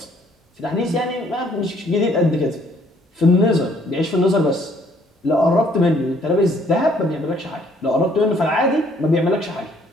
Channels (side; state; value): both; normal; correlation 0.63